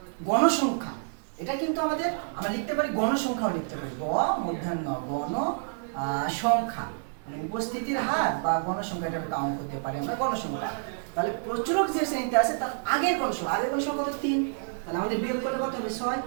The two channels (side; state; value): left; silent; digital silence